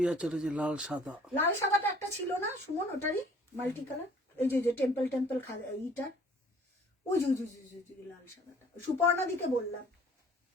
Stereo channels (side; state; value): both; normal; correlation 0.54